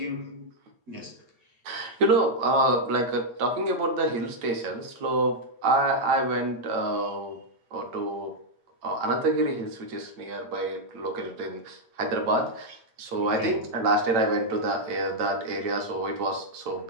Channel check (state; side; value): late; left; 8.9 ms